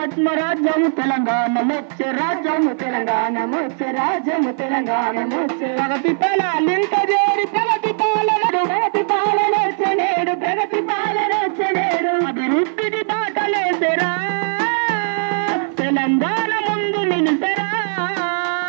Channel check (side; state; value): left; silent; 57 dB below the other